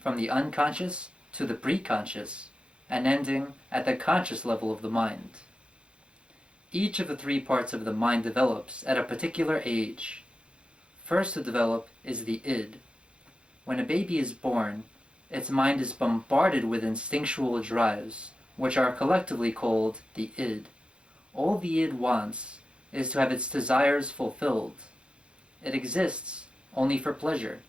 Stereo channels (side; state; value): left; late; 0.057 ms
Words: the unconscious to the preconscious and ending at the conscious level of the mind. Each of the three parts of the mind develops at a particular age. First to develop is the id. When a baby is born, its mind is bombarded with instinctual drives, which are collectively called the id. All the id wants is to have its desires fulfilled. It exists only for pleasure,